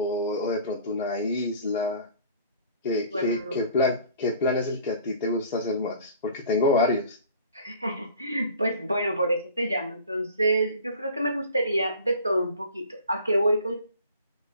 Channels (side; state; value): both; inverted; correlation -0.47